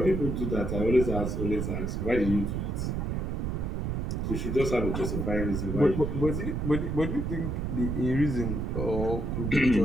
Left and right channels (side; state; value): right; noise; rumble, 1 dB below the sound